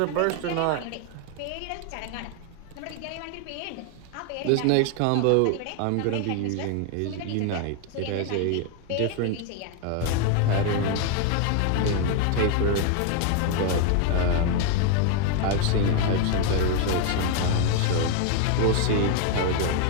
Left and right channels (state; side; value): different; both; correlation 0.01